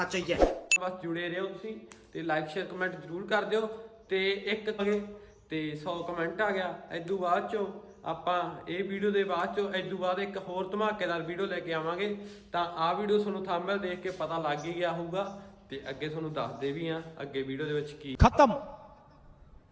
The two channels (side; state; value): both; identical; correlation 1.00